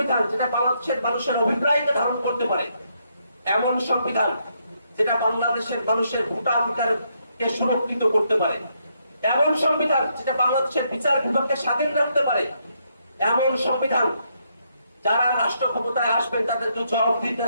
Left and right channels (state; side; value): inverted; both; correlation -0.76